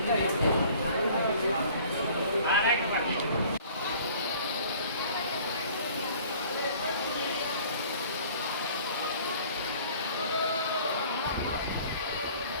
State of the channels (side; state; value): both; inverted; correlation -0.51